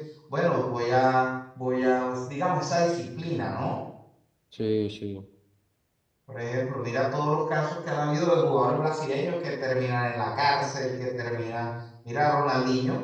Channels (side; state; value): both; identical; correlation 1.00